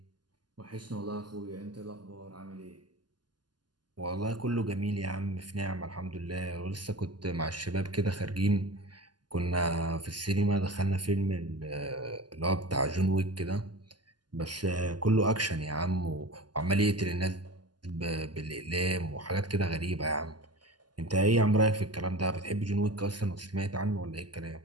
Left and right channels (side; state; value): left; late; 0.71 ms